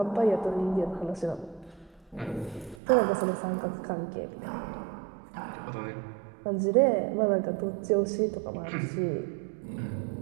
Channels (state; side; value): drops out; left; at 2.8 s